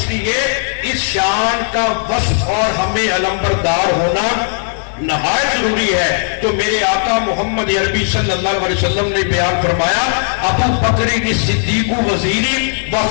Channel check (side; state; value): right; silent; digital silence